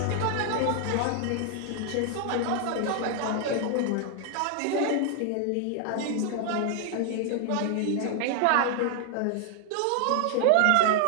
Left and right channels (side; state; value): both; different; correlation 0.00